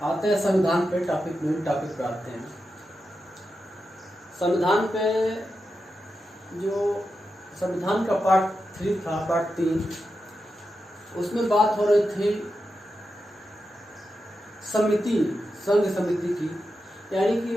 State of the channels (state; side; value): normal; both; correlation 0.89